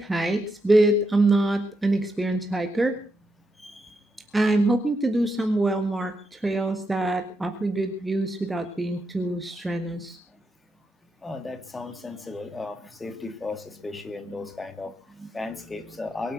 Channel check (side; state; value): both; normal; correlation 0.83